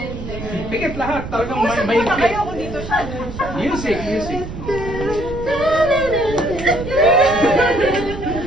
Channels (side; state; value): right; noise; rumble, 9 dB below the sound